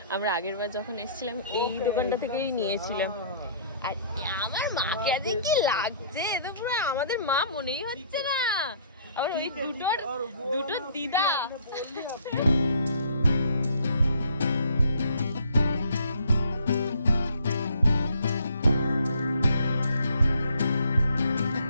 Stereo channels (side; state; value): both; inverted; correlation -0.58